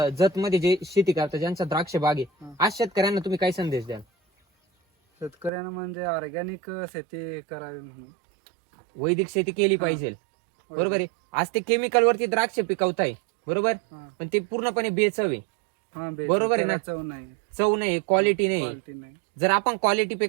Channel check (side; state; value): left; drops out; at 5.5 s